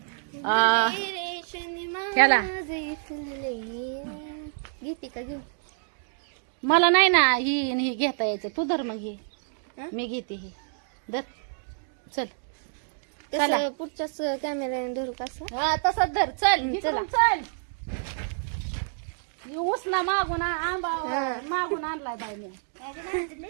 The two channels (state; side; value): silent; left; digital silence